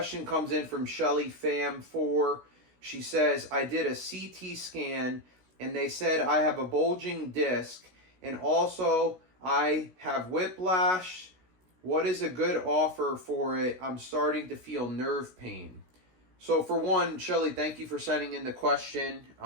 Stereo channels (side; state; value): left; late; 16 ms